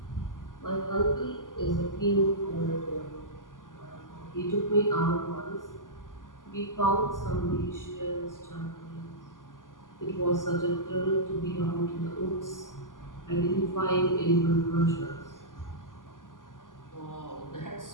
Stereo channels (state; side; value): late; right; 0.88 ms